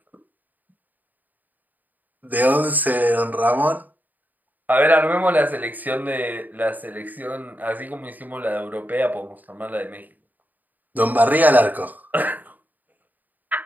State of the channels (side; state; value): left; late; 0.084 ms